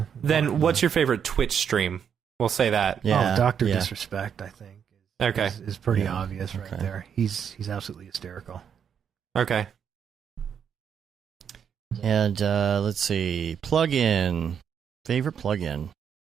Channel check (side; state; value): left; quieter; 7.8 dB